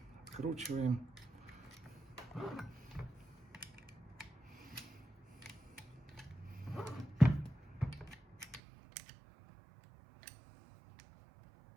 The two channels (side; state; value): left; drops out; at 8.6 s